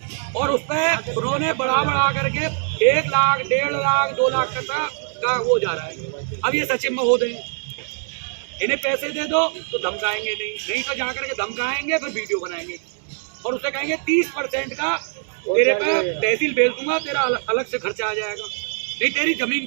और उस पर उन्होंने बढ़ा करके 1 लाख, 1.5 लाख, 2 लाख का वो जा रहा है। अब ये सचिव महोदय इन्हें पैसे दे दो तो धमकाएंगे नहीं तो जा करके धमकाएंगे, फिर वीडियो बनाएंगे और उससे कहेंगे 30% का तेरे पे तहसील भेज दूंगा, तेरा अलग से खर्चा आ जाएगा, नहीं तेरी जमीन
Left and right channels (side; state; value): left; silent; digital silence